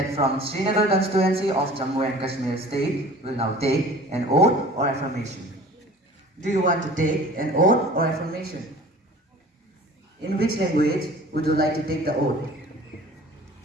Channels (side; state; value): both; normal; correlation 0.45